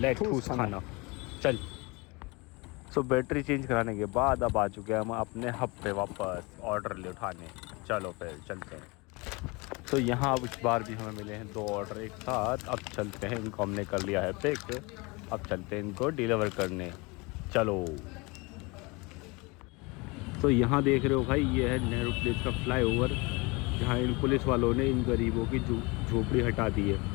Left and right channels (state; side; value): quieter; right; 26.5 dB